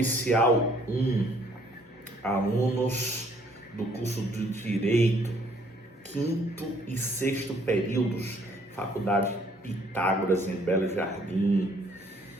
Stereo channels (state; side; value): normal; both; correlation 0.63